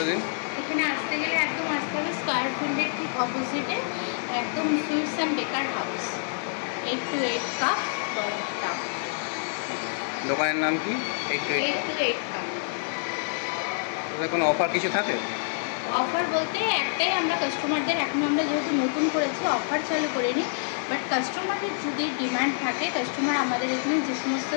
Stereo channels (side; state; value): right; silent; 60 dB below the other